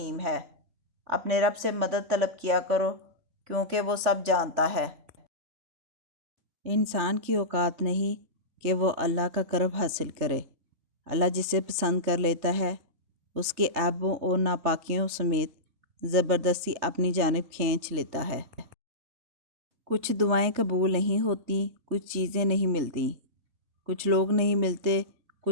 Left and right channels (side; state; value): left; late; 3.4 ms